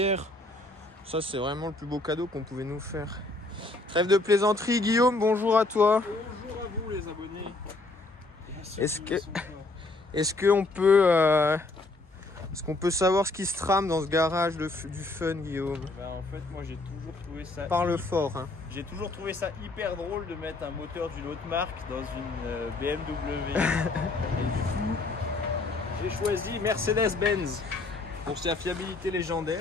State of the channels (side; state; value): right; quieter; 3.1 dB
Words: Ça, c'est vraiment le plus beau cadeau qu'on pouvait nous faire. Trêve de plaisanterie, Guillaume, bonjour à toi. Bonjour à vous les abonnés. Est-ce qu'on peut savoir ce qui se trame dans ce garage du fun, Guillaume? Ben, en fait, moi j'ai toujours trouvé ça. Parle fort. Hein. J'ai toujours trouvé ça hyper drôle de mettre un moteur d'une autre marque dans une BMW. Et du coup, j'ai choisi Mercedes-Benz pour sa fiabilité